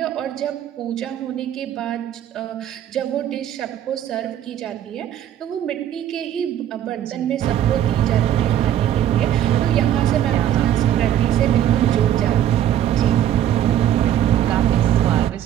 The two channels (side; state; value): left; quieter; 11.1 dB